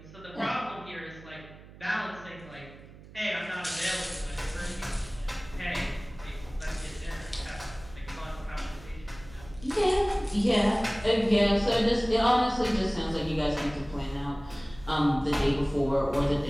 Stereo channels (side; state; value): right; noise; hum, 19 dB below the sound